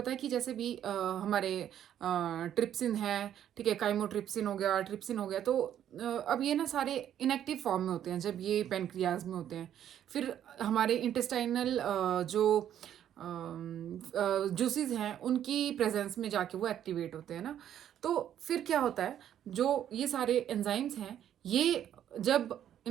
है कि जैसे भी हमारे ट्रिप्सिन है, ठीक है, काइमोट्रिप्सिन हो गया, ट्रिप्सिन हो गया, तो अब ये ना सारे इनएक्टिव फॉर्म में होते हैं जब ये पेनक्रियाज में होते हैं। फिर हमारे इंटेस्टाइनल जो जूसेस हैं उनकी प्रेजेंस में जाके वो एक्टिवेट होते हैं ना। तो फिर क्या होता है, जो ये सारे एंजाइम्स हैं, ये जब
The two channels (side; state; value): left; quieter; 10.4 dB